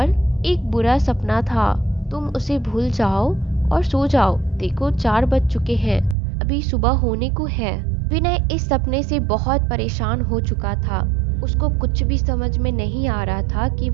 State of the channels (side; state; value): left; drops out; at 6.2 s